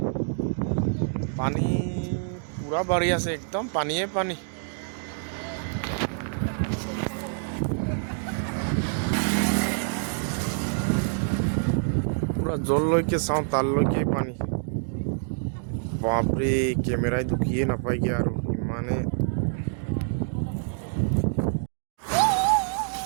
পানী পুৰা বাঢ়ি আছে, একদম পানীয়ে পানী। পুৰা জললৈকে চাওঁ তালৈকে পানী। বাপৰে কেমেৰাই দুখিয়ে নাপায়গে আৰু ইমানে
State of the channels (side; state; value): left; silent; digital silence